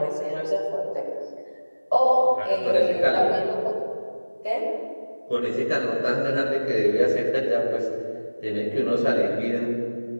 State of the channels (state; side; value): inverted; both; correlation -1.00